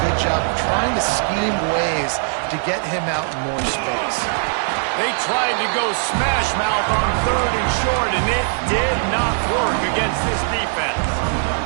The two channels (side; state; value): left; silent; digital silence